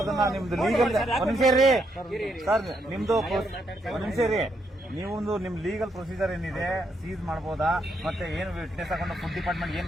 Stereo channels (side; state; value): both; normal; correlation 0.77